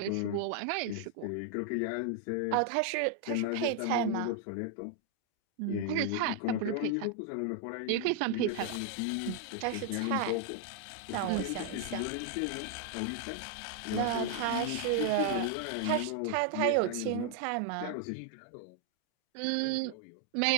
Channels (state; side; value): different; both; correlation 0.00